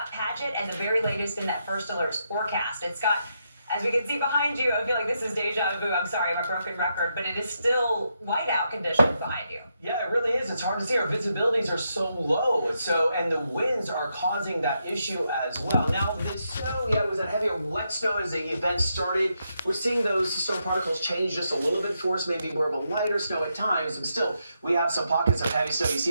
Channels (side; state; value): both; inverted; correlation -0.82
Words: Padgett and the very latest in that first alerts forecast. And Scott, as we can see behind you, I feel like this is deja vu. I'm sorry, I'm a broken record, but it is still whiteout conditions behind you. Yeah, it really is. It's hard to see. Our visibilities are so low. And the winds are causing that issue as well. Now, the snow, it was a heavy, wet snow as the event started. We're seeing those snow particles change just a little bit for us, maybe more of a lighter snow at times. And still, we have some pockets of heavy snow. You